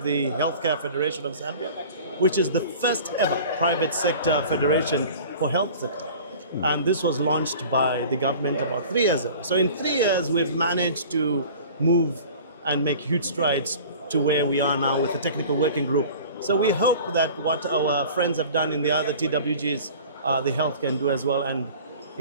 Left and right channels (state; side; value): inverted; both; correlation -0.42